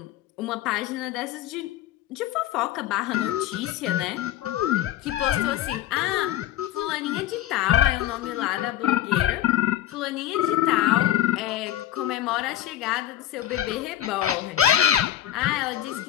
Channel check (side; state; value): right; quieter; 12.5 dB